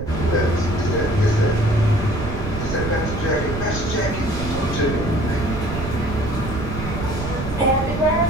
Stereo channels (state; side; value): noise; right; rumble, 6 dB below the sound